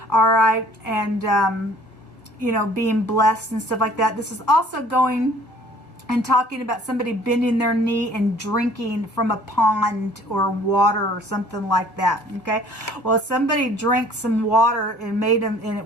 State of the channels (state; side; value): late; right; 1.5 ms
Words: all right, and you know, being blessed and stuff like that. This is also going and talking about somebody bending their knee and drinking from a pond or water or something like that. Okay, well, somebody drank some water and made them, and it